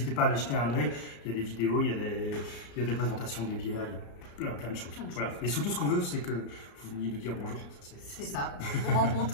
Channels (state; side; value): late; right; 34 ms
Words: pas à aller jeter un œil. Il y a des vidéos, il y a des présentations des bières, il y a plein de choses. Voilà. Et surtout, ce qu'on veut, c'est que vous veniez nous dire bonjour. C'est ça. Vous